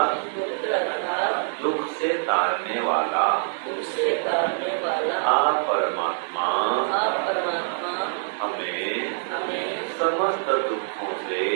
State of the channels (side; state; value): left; silent; digital silence